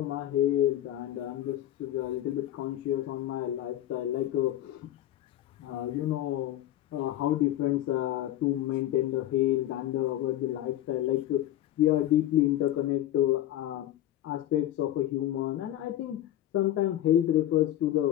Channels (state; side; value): quieter; right; 13.1 dB